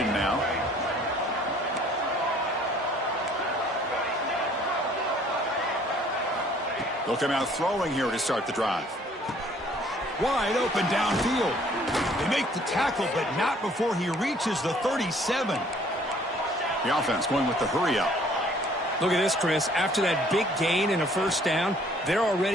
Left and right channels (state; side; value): normal; both; correlation 0.58